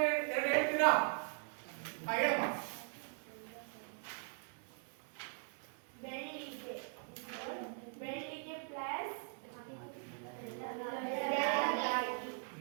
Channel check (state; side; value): silent; left; 51 dB below the other